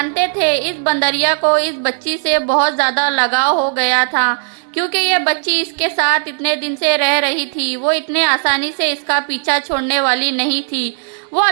थे इस बंदरिया को इस बच्ची से बहुत ज़्यादा लगाव हो गया था, क्योंकि ये बच्ची इसके साथ इतने दिन से रह रही थी। वो इतने आसानी से इसका पीछा छोड़ने वाली नहीं थी। वो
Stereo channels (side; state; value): left; silent; 68 dB below the other